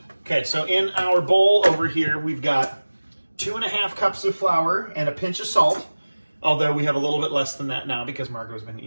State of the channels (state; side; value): inverted; both; correlation -1.00